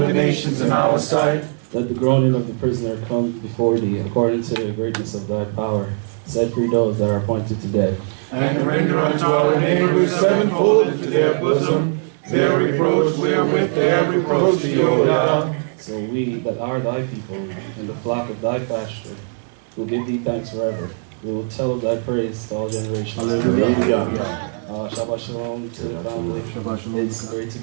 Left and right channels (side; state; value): left; silent; 66 dB below the other